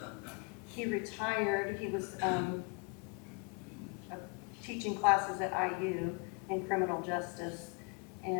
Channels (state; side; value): quieter; right; 33.2 dB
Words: He retired. He was teaching classes at IU in criminal justice